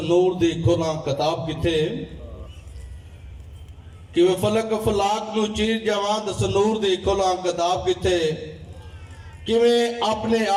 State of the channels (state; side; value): identical; both; correlation 1.00